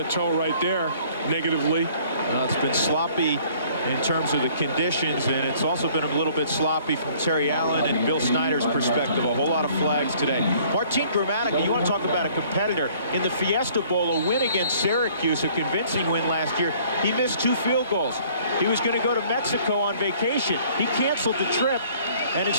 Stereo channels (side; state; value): both; inverted; correlation -0.57